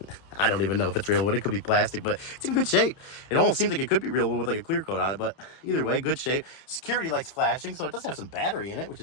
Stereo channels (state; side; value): late; right; 30 ms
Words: I don't even know if it's real wood. It could be plastic, but it's in good shape. It almost seems like it could be real wood with like a clear coat on it, but either way, good shape. Security lights flashing, so it does have some battery in it, which